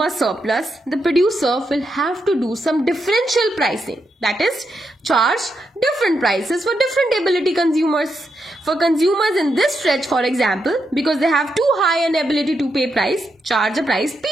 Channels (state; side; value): normal; both; correlation 0.83